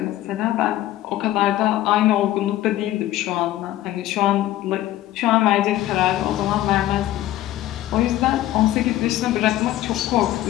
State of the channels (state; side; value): quieter; right; 14.4 dB